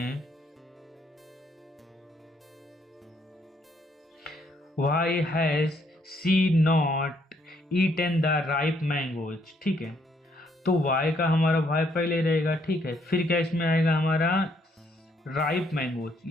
why has she not eaten the ripe mangoes. ठीक है, तो वाई का हमारा वाई पहले रहेगा। ठीक है, फिर क्या इसमें आएगा हमारा राइप मैंगोज,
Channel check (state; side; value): normal; both; correlation 0.70